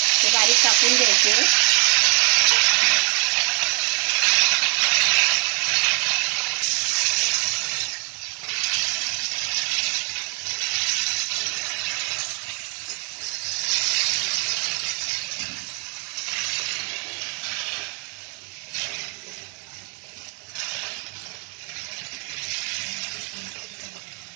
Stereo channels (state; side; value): quieter; left; 35.6 dB